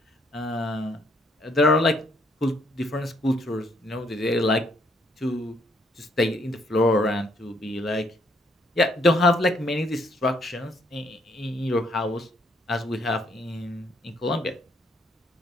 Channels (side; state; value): both; normal; correlation 0.69